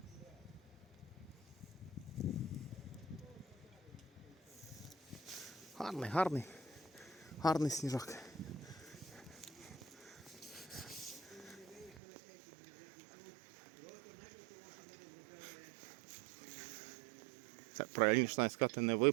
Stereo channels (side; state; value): left; drops out; at 12.0 s